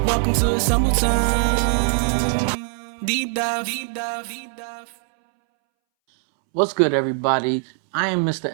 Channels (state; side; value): silent; left; 64 dB below the other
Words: Welcome to AssembleTime. Deep dive. What's good, everybody? I am Mr.